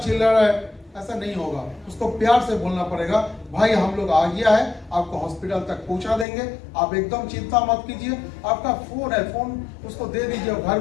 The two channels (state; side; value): drops out; right; at 6.2 s